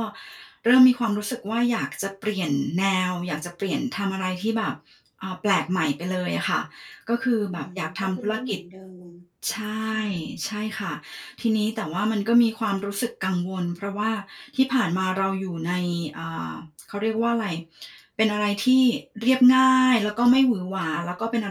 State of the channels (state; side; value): identical; both; correlation 1.00